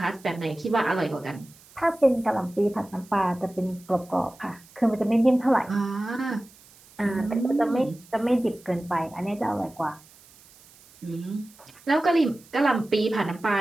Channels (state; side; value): noise; right; hiss, 25 dB below the sound